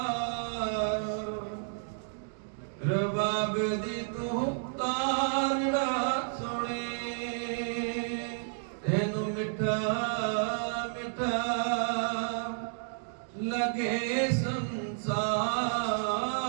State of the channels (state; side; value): silent; left; digital silence